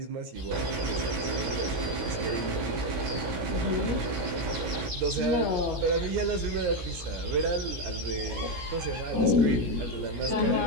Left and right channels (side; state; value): left; late; 17 ms